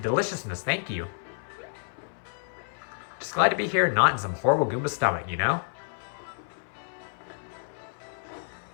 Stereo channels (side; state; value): right; silent; 58 dB below the other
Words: Thank you. Just glad to be here, not in some horrible Goomba stomach, you know?